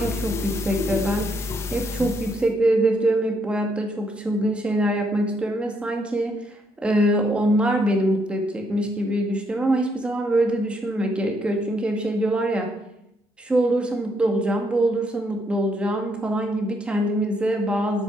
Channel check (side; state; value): both; normal; correlation 0.74